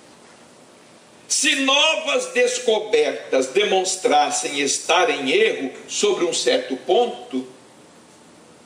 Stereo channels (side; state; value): both; identical; correlation 1.00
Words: Se novas descobertas demonstrassem estar em erro sobre um certo ponto,